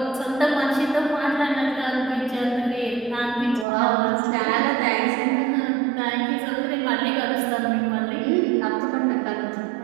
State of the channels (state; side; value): drops out; left; at 3.7 s